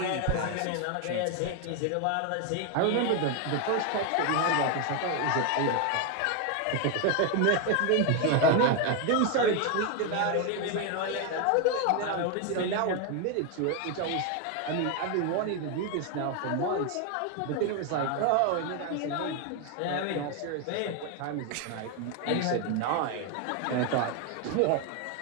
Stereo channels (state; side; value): different; both; correlation 0.01